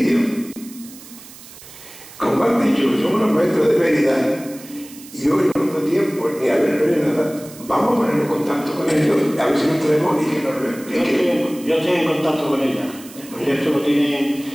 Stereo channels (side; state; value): right; noise; hiss, 18 dB below the sound